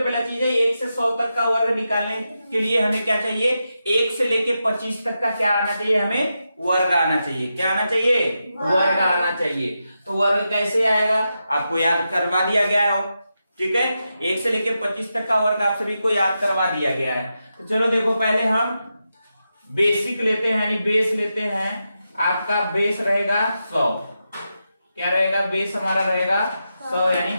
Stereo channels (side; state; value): both; inverted; correlation -0.88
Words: चीज है 1 से 100 तक का वर्ग निकालने के लिए हमें क्या चाहिए, 1 से लेके 25 तक का क्या आना चाहिए, हमें वर्ग आना चाहिए। क्या आना चाहिए? वर्ग आना चाहिए। तो वर्ग कैसे आएगा, आपको याद करवा दिया गया हो। ठीक है, 1 से लेके 25 तक का वर्ग आप सभी को याद करवा दिया गया है। तो चलो देखो, पहले हम बेसिक लेते हैं, यानी बेस लेते हैं। आपका बेस रहेगा 100। क्या रहेगा? बेस हमारा रहेगा 100 यानी